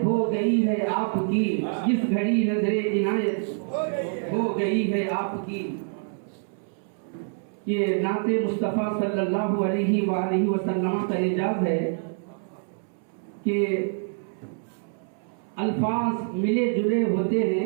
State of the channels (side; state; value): left; silent; 61 dB below the other